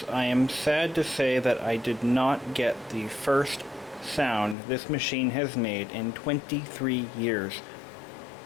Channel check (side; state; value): right; drops out; at 4.5 s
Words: I am sad to say that I did not get the first sound this machine has made in 23 years